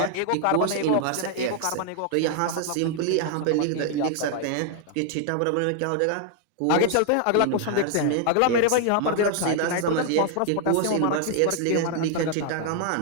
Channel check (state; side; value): different; both; correlation 0.00